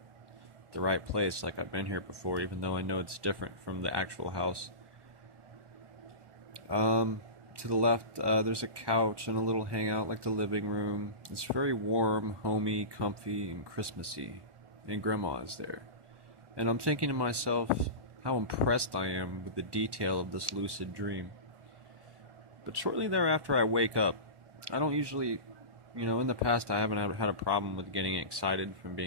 the right place, like I've been here before, even though I know it's different from the actual house. To the left, there's a couch and a little hangout like the living room. It's very warm, homey, comfy, and Christmassy, and Grandma is there. And I'm thinking to myself how impressed I am with the detail of this lucid dream. But shortly thereafter, I wake up. I don't usually, in the past I haven't had a problem with getting excited from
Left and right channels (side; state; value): left; late; 1.1 ms